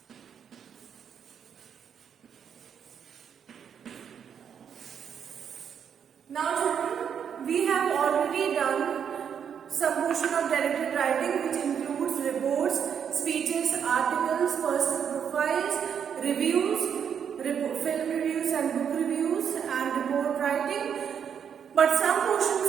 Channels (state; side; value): quieter; left; 7.8 dB